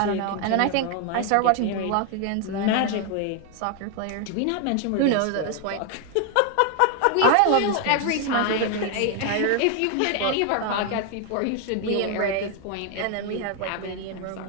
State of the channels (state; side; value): different; both; correlation 0.01